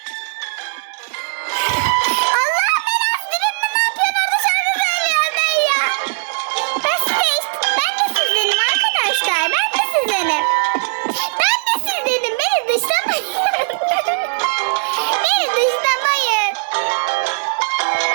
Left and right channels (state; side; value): silent; left; digital silence